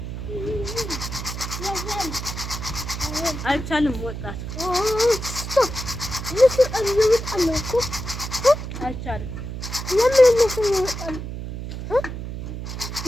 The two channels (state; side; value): noise; right; hum, 7 dB below the sound